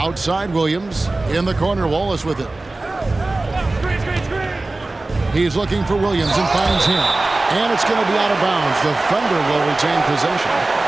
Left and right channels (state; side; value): quieter; left; 3.1 dB